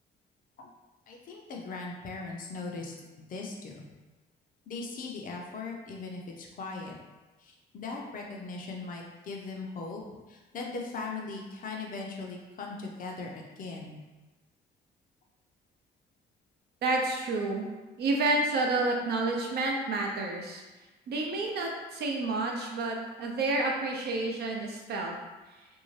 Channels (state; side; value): normal; both; correlation 0.26